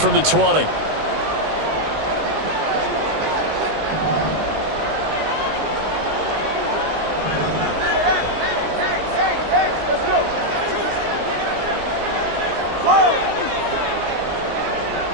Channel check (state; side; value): late; left; 19 ms